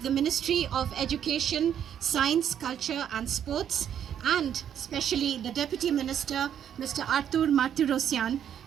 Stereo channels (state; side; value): quieter; left; 9.3 dB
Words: the Ministry of Education, Science, Culture and Sports, and especially the Deputy Minister, Mr. Artur Martirosyan,